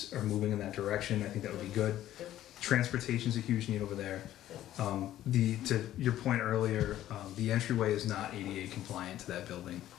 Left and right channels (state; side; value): quieter; right; 13.1 dB